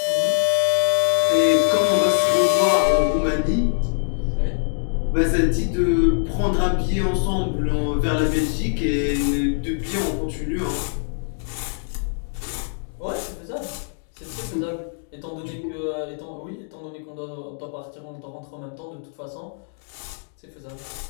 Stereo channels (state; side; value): silent; right; digital silence